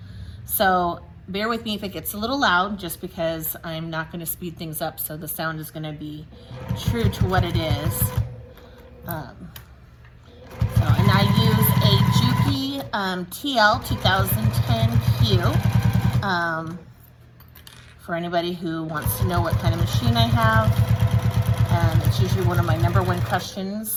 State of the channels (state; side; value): identical; both; correlation 1.00